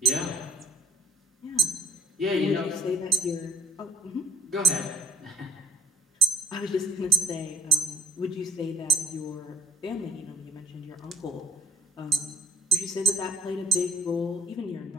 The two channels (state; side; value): normal; both; correlation 0.63